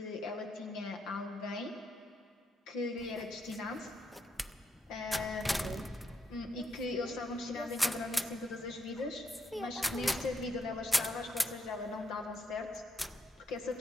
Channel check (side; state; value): both; normal; correlation 0.79